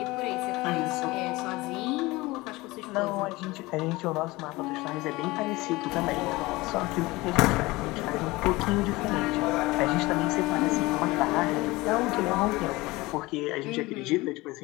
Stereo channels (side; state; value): right; quieter; 21.2 dB